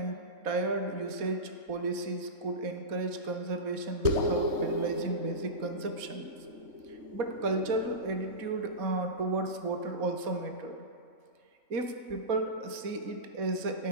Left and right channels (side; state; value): left; late; 3.6 ms